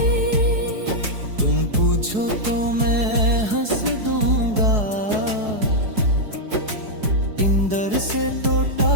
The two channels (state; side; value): late; left; 4.7 ms